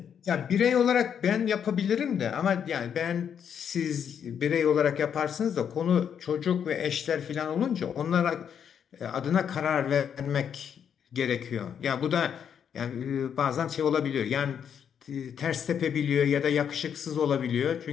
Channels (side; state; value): right; quieter; 8.1 dB